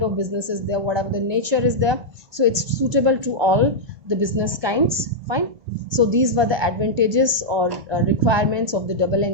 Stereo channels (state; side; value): late; left; 1.2 ms